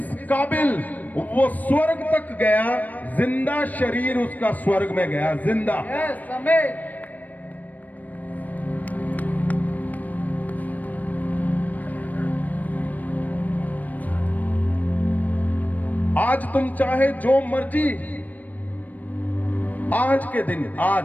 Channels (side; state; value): right; late; 0.080 ms